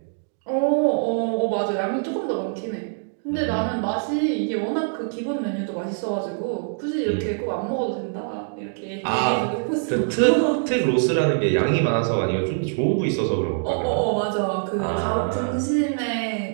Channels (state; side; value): silent; left; digital silence